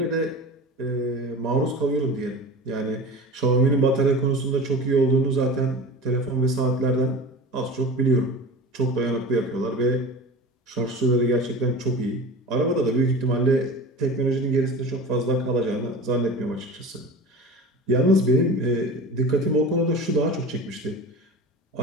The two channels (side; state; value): both; normal; correlation 0.34